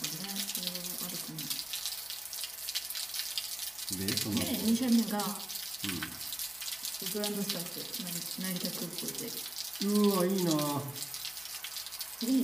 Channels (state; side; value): noise; left; hum, 28 dB below the sound